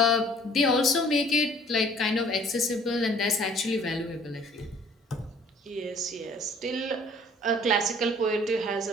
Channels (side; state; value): both; normal; correlation 0.54